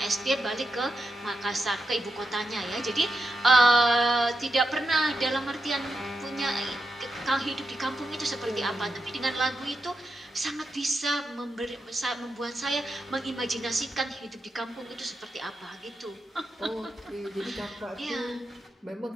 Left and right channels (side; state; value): both; normal; correlation 0.87